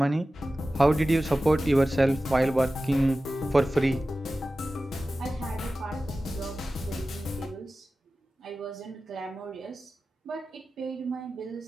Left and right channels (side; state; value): both; normal; correlation 0.95